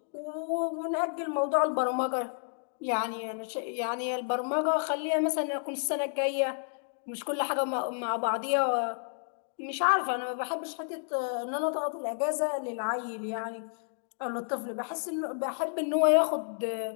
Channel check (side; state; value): right; silent; digital silence